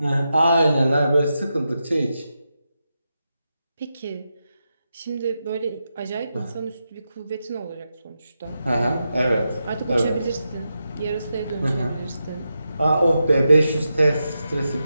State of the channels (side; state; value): both; inverted; correlation -0.88